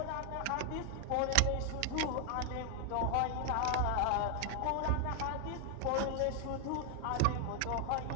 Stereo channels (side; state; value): both; different; correlation 0.00